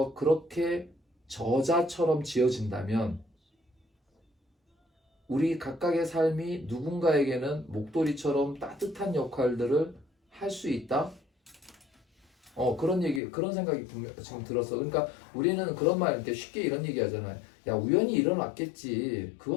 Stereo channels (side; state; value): right; drops out; at 13.2 s